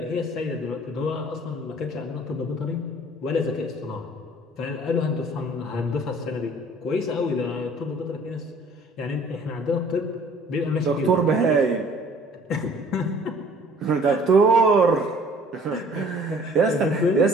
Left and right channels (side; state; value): both; normal; correlation 0.54